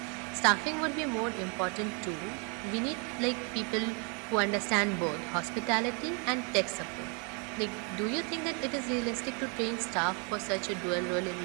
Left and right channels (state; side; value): quieter; left; 35.6 dB